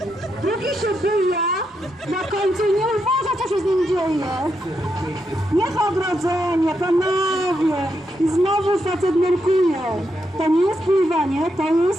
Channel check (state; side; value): normal; both; correlation 0.82